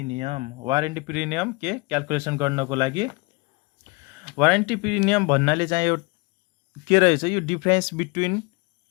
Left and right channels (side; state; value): right; quieter; 28.0 dB